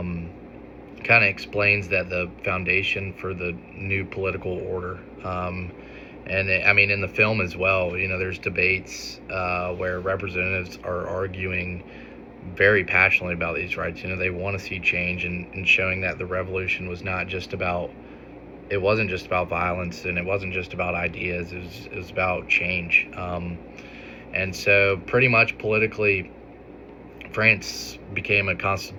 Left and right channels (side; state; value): both; identical; correlation 1.00